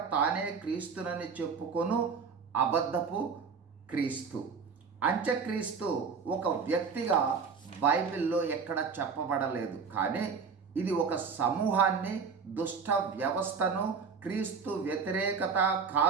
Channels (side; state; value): left; quieter; 5.6 dB